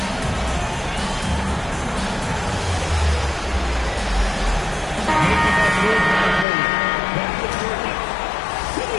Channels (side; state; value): right; drops out; at 6.5 s